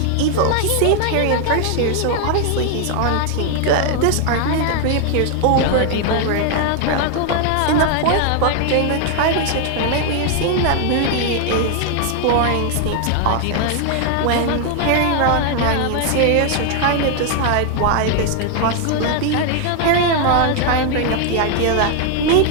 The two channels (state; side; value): different; both; correlation 0.00